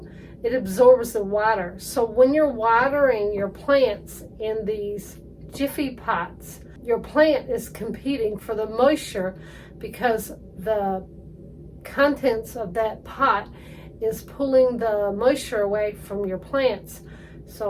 It absorbs the water. So when you're watering your plants in these Jiffy pots, your plant is competing for the moisture because the contents of that pot is pulling the moisture away from your plants.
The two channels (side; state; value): both; identical; correlation 1.00